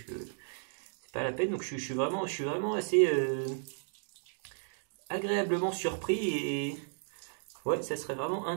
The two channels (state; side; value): silent; left; digital silence